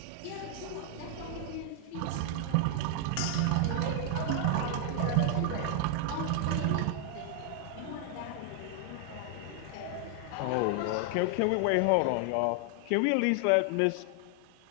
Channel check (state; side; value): different; both; correlation 0.00